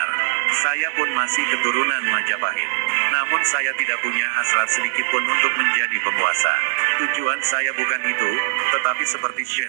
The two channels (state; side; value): silent; left; 65 dB below the other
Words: Saya pun masih keturunan Majapahit. Namun saya tidak punya hasrat sedikit pun untuk menjadi penguasa. Tujuan saya bukan itu, tetapi seperti